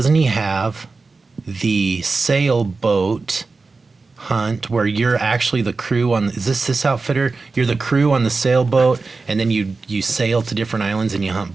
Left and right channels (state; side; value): quieter; left; 4.0 dB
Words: he have the sailboat hunt where you're actually the crew on, is this outfitter? You're the crew on the sailboat, and then you sail to different islands and you hunt